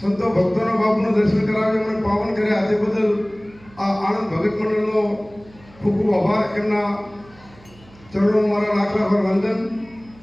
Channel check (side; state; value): right; noise; hum, 25 dB below the sound